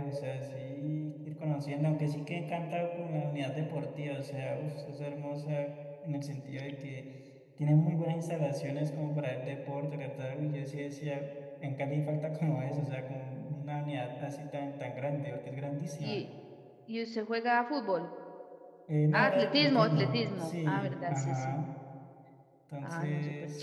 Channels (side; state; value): both; identical; correlation 1.00